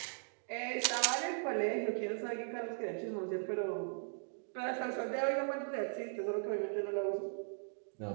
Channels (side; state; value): left; silent; digital silence